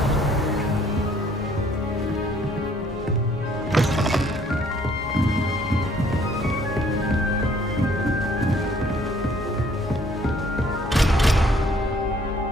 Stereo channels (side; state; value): both; normal; correlation 0.61